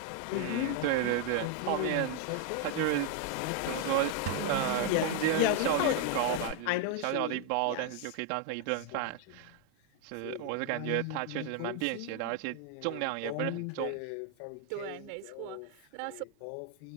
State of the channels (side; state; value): both; different; correlation 0.00